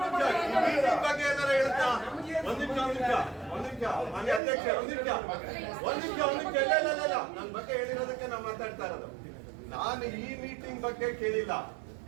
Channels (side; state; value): left; drops out; at 4.4 s